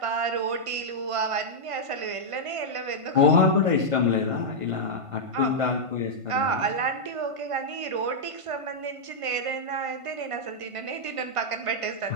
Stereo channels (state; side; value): late; left; 1.5 ms